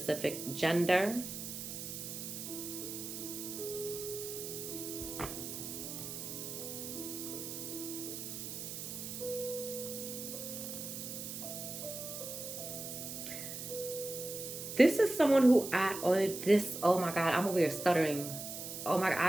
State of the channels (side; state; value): right; noise; hiss, 7 dB below the sound